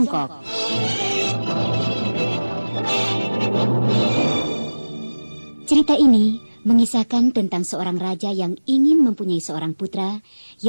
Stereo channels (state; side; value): inverted; both; correlation -1.00